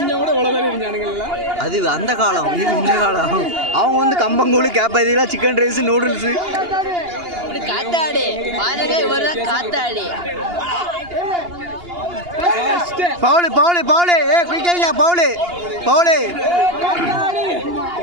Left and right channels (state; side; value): late; left; 2.8 ms